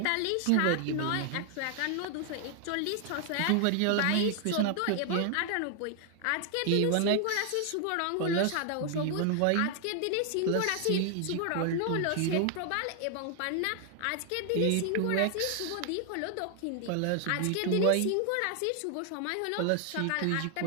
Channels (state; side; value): different; both; correlation 0.00